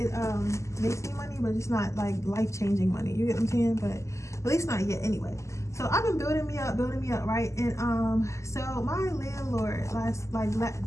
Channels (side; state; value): right; late; 0.14 ms